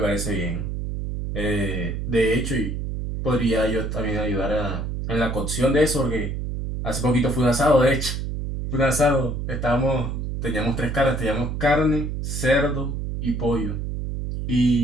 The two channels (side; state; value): right; noise; hum, 3 dB below the sound